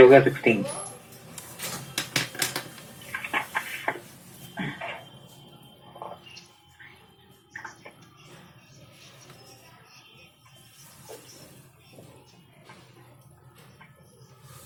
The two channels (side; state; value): both; identical; correlation 1.00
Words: हो गया 16।